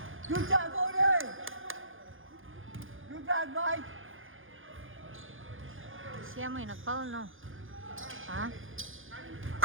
Good job, Bodie! Good job, Mike! Siya mo yung nag-foul, no? Ha?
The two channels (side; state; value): left; late; 0.58 ms